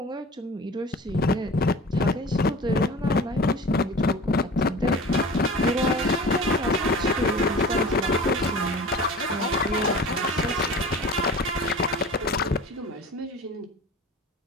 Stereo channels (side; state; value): both; normal; correlation 0.38